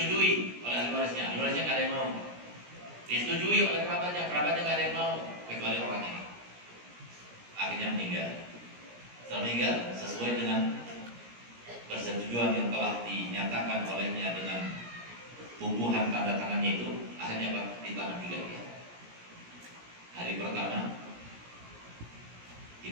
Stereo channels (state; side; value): late; left; 17 ms